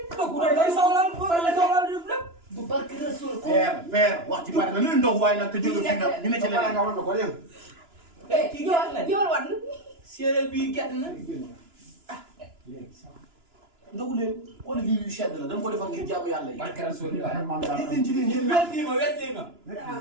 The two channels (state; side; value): late; left; 2.9 ms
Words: dëkku day soxla lépp bu barke Rasul ko. père wax ci bari na lu ndog waaye nag te jóge fi nag ñu ne ci leneen. nga wan ko léegi. kii gerte la. yow wan. séeréer bi gerte na. ndogu leen xool lii yu sedd la dañ ko defal ngir jaamu yàlla yi. barke Rasulillah. nit leen ci leen ngeen naan. wetti ma.